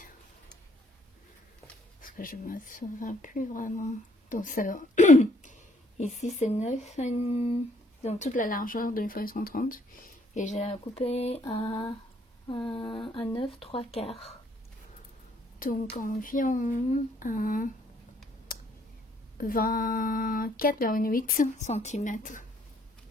parce que je me souviens plus vraiment, donc ça ici c'est 9, donc toute la largeur d'une feuille 130, et j'ai coupé à 9 3/4, donc environ 24,8 cm.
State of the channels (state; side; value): normal; both; correlation 0.65